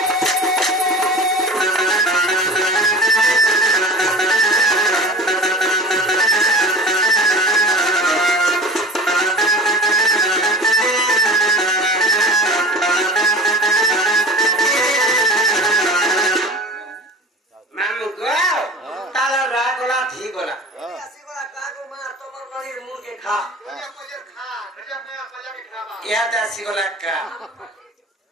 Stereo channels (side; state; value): both; normal; correlation 0.35